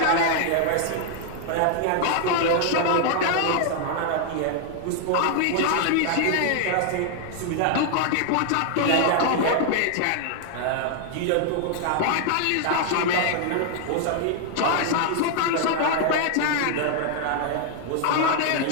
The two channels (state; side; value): different; both; correlation 0.00